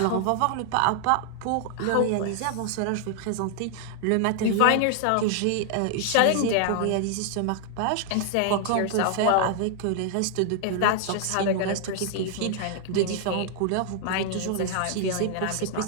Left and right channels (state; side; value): different; both; correlation 0.00